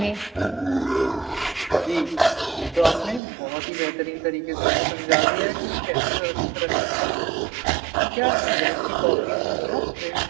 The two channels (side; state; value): left; drops out; at 3.2 s